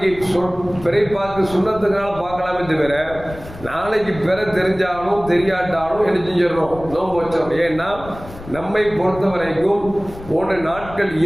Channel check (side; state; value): left; noise; rumble, 16 dB below the sound